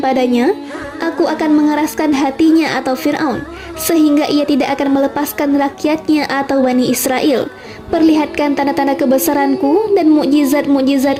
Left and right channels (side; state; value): both; identical; correlation 1.00